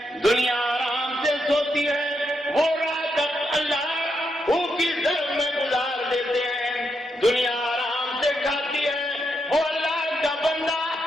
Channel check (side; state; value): both; normal; correlation 0.82